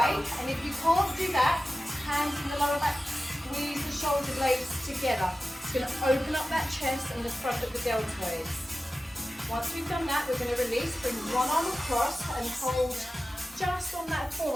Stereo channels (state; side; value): normal; both; correlation 0.95